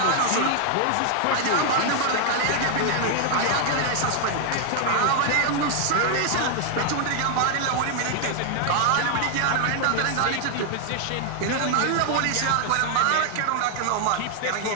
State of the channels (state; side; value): different; both; correlation 0.00